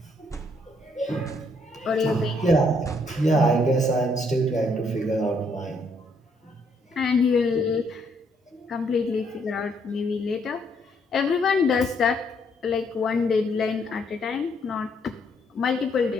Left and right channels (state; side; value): normal; both; correlation 0.71